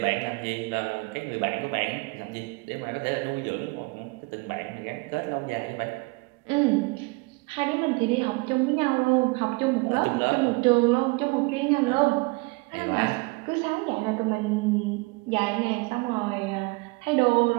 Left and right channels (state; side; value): quieter; left; 27.0 dB